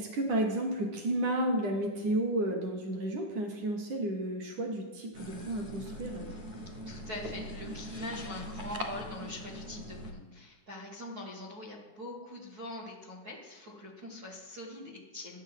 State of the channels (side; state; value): left; late; 9.9 ms